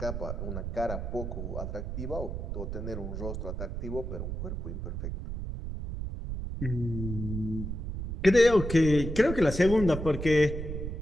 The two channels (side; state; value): right; noise; rumble, 5 dB below the sound